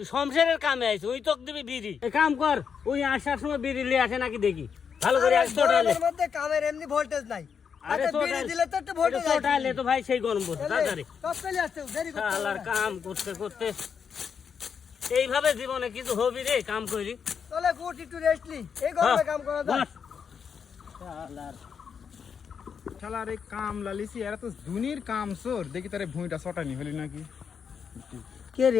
শমশেরের কামে আইছু, ওই তোকে দিবি বিড়ি। এক কাম কর, ওই আসার সময় বিড়ি লিয়ে আসে নাকি দেখি ভালো করে। গরমের মধ্যে কামের এমনি ভোল্টেজ নাই। আরে বিড়ি দিলে তো একটু ভোল্টেজ আছে। টোটালে তো ভাই সেই গরম পড়ছে তাড়াতাড়ি। সব চলে আসছে, দেরি করতে হবে শালার না। কাম করতে করতে এইভাবে জীবনে কিছু হবি রে, কাম করি। চলে গুড, একটু রেস্ট নি, এই গরমে কাম করা যায়। শালার শালার এই কাম লালিসি, এরা তো দুনির কাম চোর। দেখি তারে ভুঁইটা চটানি হলি নাকি। কে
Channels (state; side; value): quieter; right; 6.8 dB